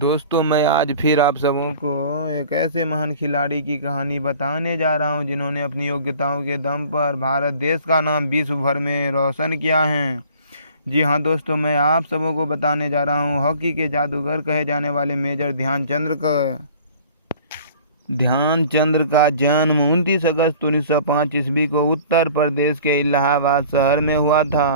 मैं आज फिर आप सबों को एक ऐसे महान खिलाड़ी की कहानी बताने जा रहा हूं जिन्होंने अपनी योग्यताओं के दम पर भारत देश का नाम विश्व भर में रोशन किया है। जी हाँ दोस्तों, मैं आप सबों को बताने जा रहा हूं हॉकी के जादूगर कहे जाने वाले मेजर ध्यानचंद्र का जन्म 29 अगस्त 1905 ईस्वी को उत्तर प्रदेश के इलाहाबाद शहर में हुआ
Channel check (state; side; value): inverted; both; correlation -0.48